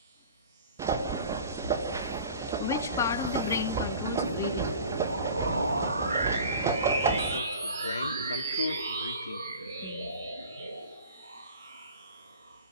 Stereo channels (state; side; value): inverted; both; correlation -0.42